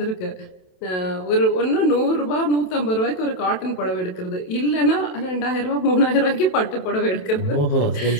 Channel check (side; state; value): right; late; 27 ms